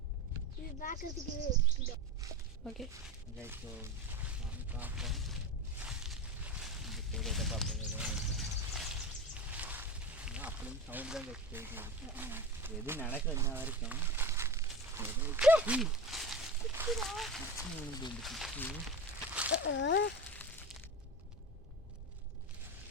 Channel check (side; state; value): both; normal; correlation 0.28